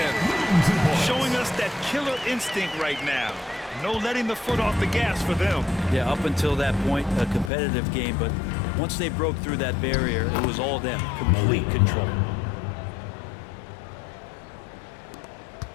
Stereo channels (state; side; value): drops out; right; at 7.5 s